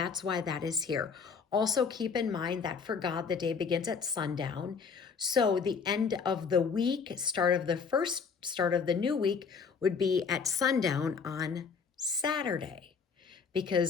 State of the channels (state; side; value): quieter; right; 5.7 dB